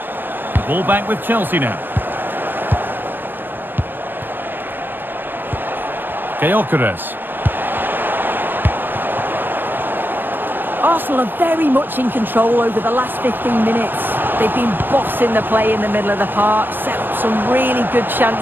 The ball back with Chelsea now. Gyökeres. Arsenal are very much in control over the last 15 minutes. They've been bossing the play in the middle of the park, set up some really good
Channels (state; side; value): late; left; 0.095 ms